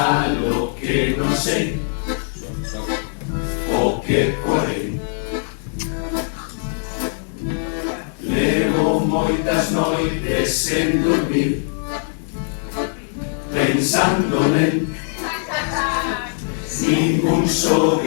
lo que non sei o que porei. Levo moitas noites sen dormir pensando nel. Ningún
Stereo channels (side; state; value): right; silent; digital silence